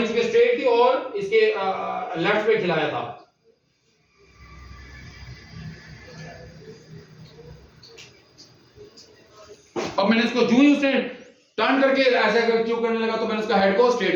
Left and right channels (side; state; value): both; identical; correlation 1.00